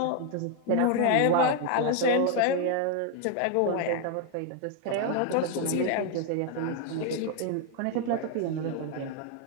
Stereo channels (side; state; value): both; different; correlation 0.00